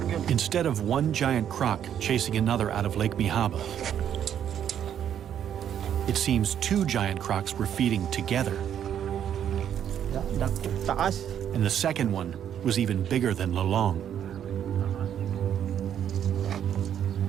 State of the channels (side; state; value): left; quieter; 9.6 dB